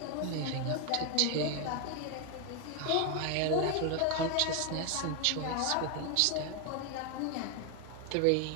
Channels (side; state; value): both; different; correlation 0.01